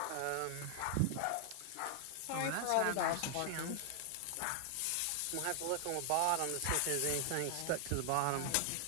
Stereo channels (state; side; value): different; both; correlation 0.00